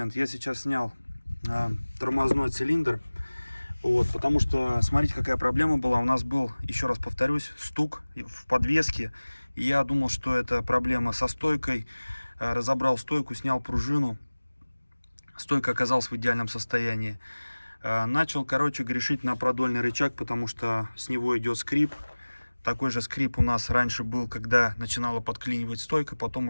Я сейчас снял тормозной цилиндр. Вот, потому что, смотрите, какая проблема была. У нас был, еще раз повторюсь, стук в подвеске. И я думал, что это проблема со стойкой. Разобрал стойку, снял пружину. Стойка оказалась в идеальном состоянии. Начал, короче, грешить на продольный рычаг, потому что с него идет скрип. Такой же скрип у нас раньше был, когда начинала подклинивать стойка, потом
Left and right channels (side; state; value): both; inverted; correlation -1.00